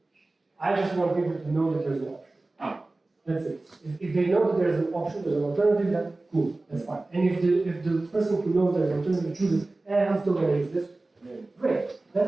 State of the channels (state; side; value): quieter; left; 3.1 dB